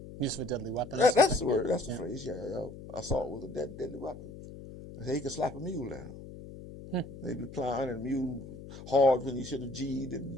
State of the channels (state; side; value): noise; left; hum, 14 dB below the sound